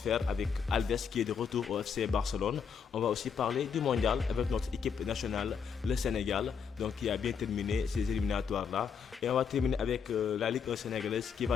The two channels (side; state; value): right; quieter; 6.6 dB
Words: avec Alves qui est de retour au FC Barcelone. On va aussi parler du mondial avec notre équipe nationale, le Sénégal, donc qui a bien terminé ces éliminatoires-là. Et on va terminer avec la Ligue 1 sénégalaise qui